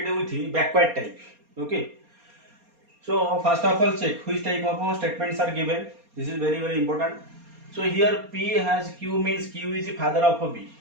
with the backward type. Okay. So first of all check which type of statements are given. This is very important. So here P has Q means Q is the father of B.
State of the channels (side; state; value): left; late; 4.3 ms